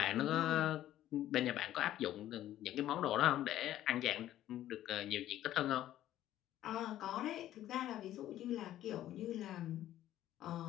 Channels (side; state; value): right; quieter; 13.0 dB